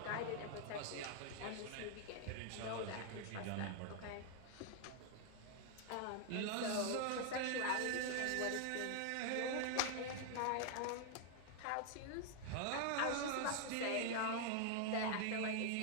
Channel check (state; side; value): different; both; correlation 0.00